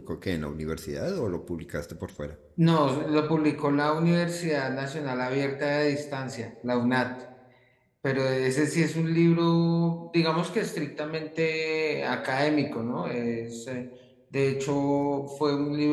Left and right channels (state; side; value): identical; both; correlation 1.00